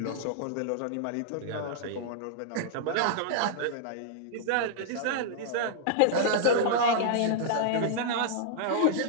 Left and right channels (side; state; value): both; different; correlation -0.01